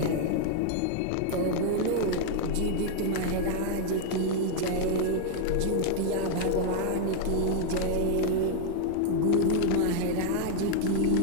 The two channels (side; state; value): both; different; correlation 0.00